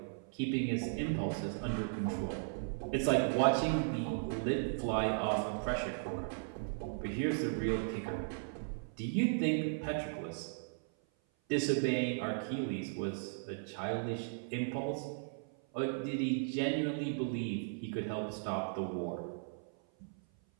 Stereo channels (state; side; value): silent; left; 53 dB below the other